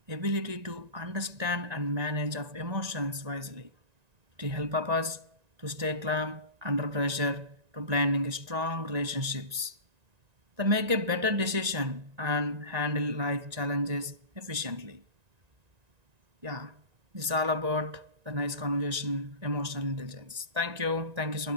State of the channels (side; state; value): left; late; 1.9 ms